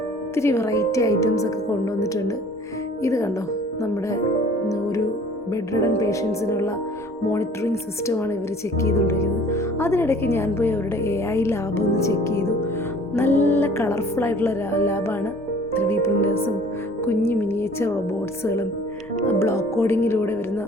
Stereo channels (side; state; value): both; normal; correlation 0.50